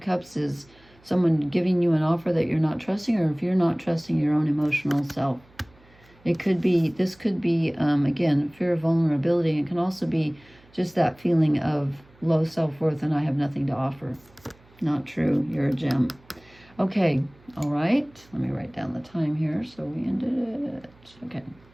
is someone giving you an offer that you're not trusting, or if you're not trusting your own emotional self. It could be, this could be, again, fear of vulnerability. It can also be just that feeling of low self-worth and I have nothing to offer. Not true. You're a gem. Okay. All right. Let me write down the time here so we ended it. Okay.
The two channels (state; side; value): noise; right; hum, 29 dB below the sound